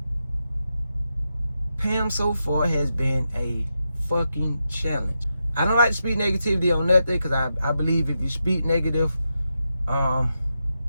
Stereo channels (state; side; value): inverted; both; correlation -0.87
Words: Pam so far has been a fucking challenge. I don't like to speak negativity on nothing because I believe if you speak negative